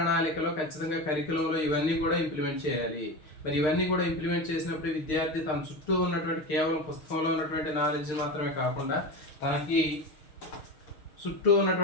ఖచ్చితంగా కరికులంలో ఇవన్నీ కూడా ఇంప్లిమెంట్ చేయాలి. మరి ఇవన్నీ కూడా ఇంప్లిమెంట్ చేసినప్పుడు విద్యార్థి తన చుట్టూ ఉన్నటువంటి కేవలం పుస్తకంలో ఉన్నటువంటి నాలెడ్జ్ మాత్రమే కాకుండా, తనకి చుట్టూ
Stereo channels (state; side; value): late; right; 6.4 ms